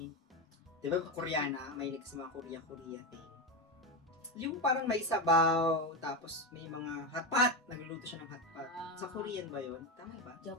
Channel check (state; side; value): normal; both; correlation 0.14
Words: Diba Koreana, may sa mga Korea thing. Yung parang may sabaw, tapos may mga hotpot. Nagluluto siya ng hotpot. Ah. Sa Korean ba yun? Tama ba?